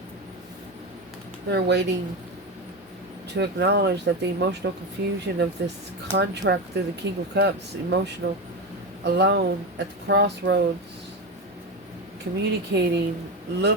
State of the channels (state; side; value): normal; both; correlation 0.17